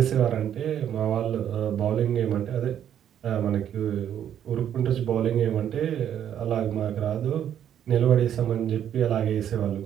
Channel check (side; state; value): left; quieter; 9.8 dB